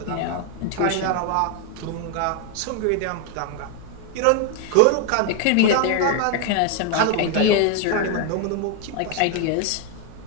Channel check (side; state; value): both; different; correlation 0.01